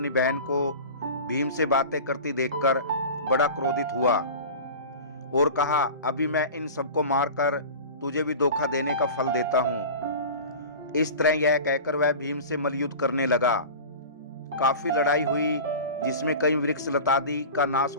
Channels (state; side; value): inverted; both; correlation -0.35